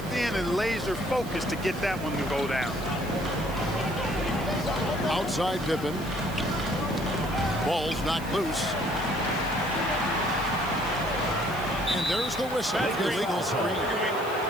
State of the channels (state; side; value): noise; right; hiss, 18 dB below the sound